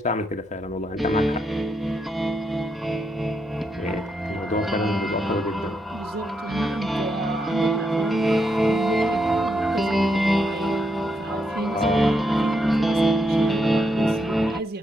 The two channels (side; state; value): both; normal; correlation 0.80